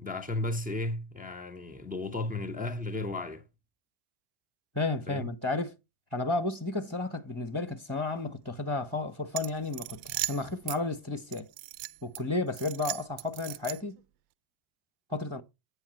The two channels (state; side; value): late; left; 3.7 ms